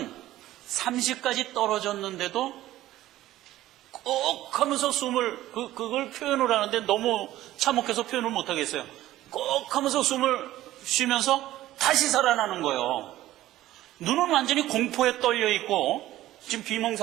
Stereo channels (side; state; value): left; quieter; 14.9 dB